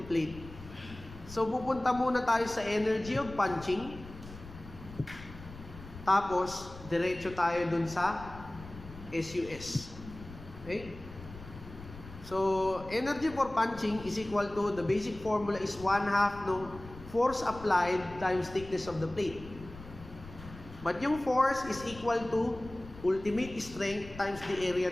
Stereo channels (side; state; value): left; noise; rumble, 15 dB below the sound